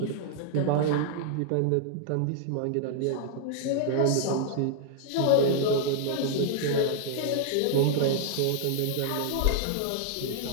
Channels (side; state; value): both; different; correlation 0.00